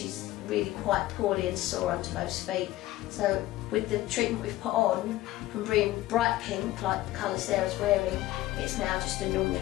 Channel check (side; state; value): right; quieter; 16.3 dB